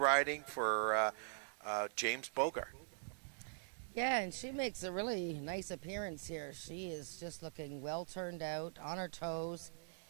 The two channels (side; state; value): left; silent; digital silence